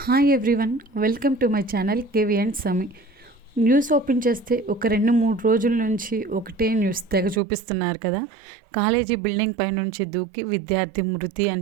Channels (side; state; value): left; drops out; at 7.4 s